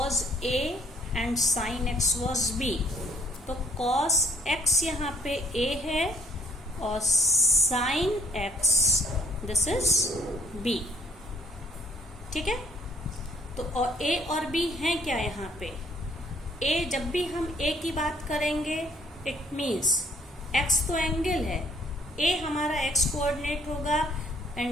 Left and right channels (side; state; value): both; normal; correlation 0.63